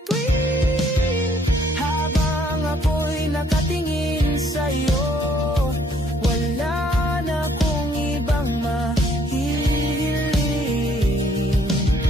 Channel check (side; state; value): both; normal; correlation 0.65